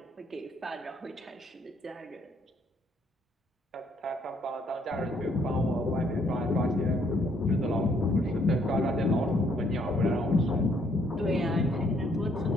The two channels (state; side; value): normal; both; correlation 0.68